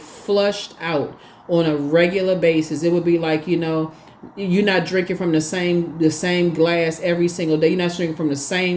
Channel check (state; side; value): identical; both; correlation 1.00